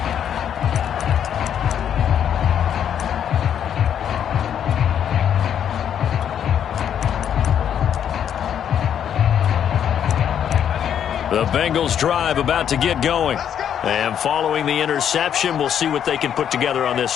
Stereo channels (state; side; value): quieter; right; 9.1 dB